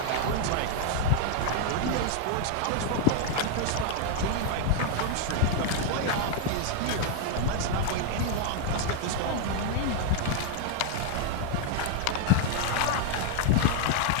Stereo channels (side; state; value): both; different; correlation 0.00